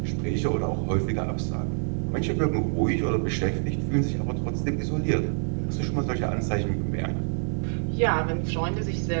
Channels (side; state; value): left; silent; 61 dB below the other